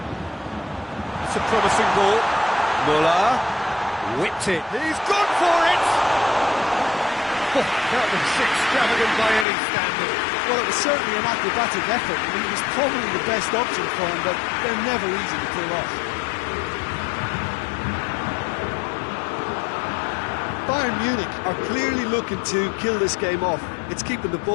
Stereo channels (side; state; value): right; drops out; at 9.5 s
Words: It's a promising ball. Muller whipped it. He's gone for it! Oh, that was extravagant by any standard. Well, it was certainly an acrobatic effort. I mean, it was probably the best option for him, but they're never easy to pull off. Bayern Munich are clearly looking to kill this game off. It's keeping the